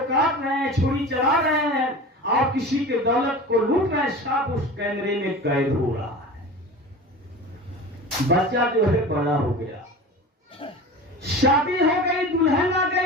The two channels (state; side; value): normal; both; correlation 0.34